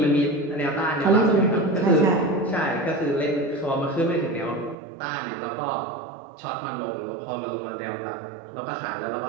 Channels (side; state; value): left; drops out; at 4.8 s